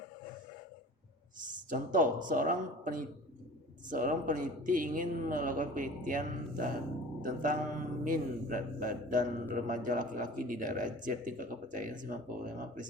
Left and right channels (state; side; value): normal; both; correlation 0.42